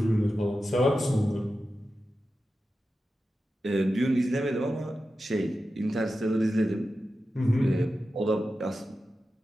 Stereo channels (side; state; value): both; normal; correlation 0.92